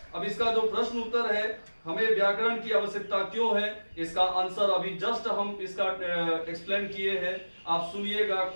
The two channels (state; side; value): inverted; both; correlation -1.00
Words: अब इसका जो प्रश्न उत्तर है, हमें व्याकरण की आवश्यकता क्यों है, इसका आंसर अभी जस्ट हम इसका एक्सप्लेन किए हैं। आप सुनिएगा,